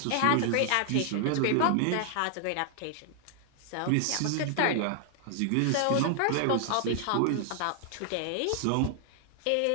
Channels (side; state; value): both; different; correlation 0.00